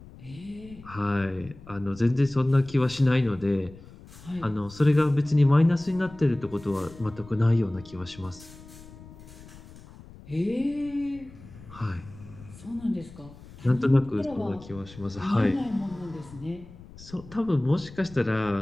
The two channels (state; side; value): noise; left; rumble, 19 dB below the sound